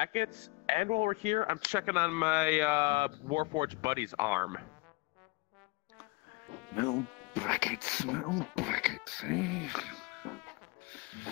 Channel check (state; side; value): quieter; right; 25.4 dB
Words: and while we're here, I'm checking on my Warforged buddy's arm. Metal brackets, eh?